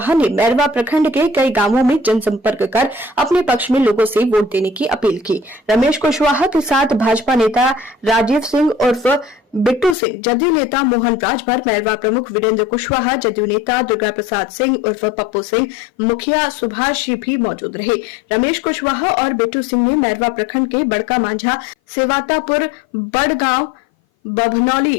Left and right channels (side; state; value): right; drops out; at 10.0 s